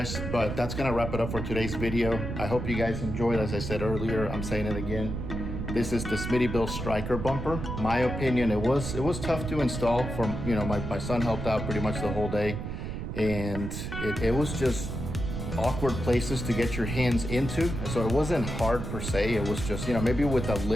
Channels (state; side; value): noise; right; rumble, 5 dB below the sound